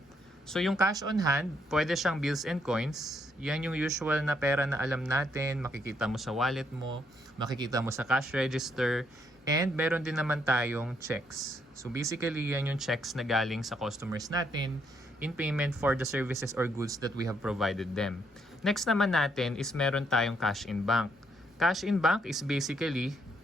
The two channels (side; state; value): both; normal; correlation 0.74